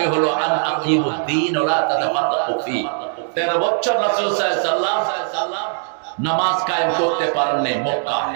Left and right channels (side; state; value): left; silent; digital silence